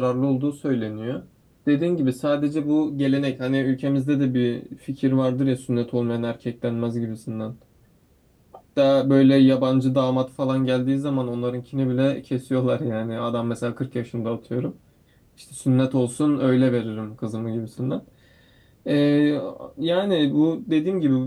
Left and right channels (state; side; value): identical; both; correlation 1.00